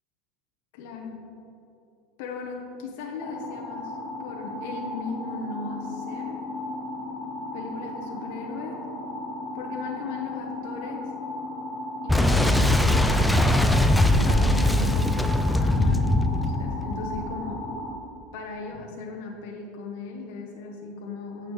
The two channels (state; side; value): normal; both; correlation 0.70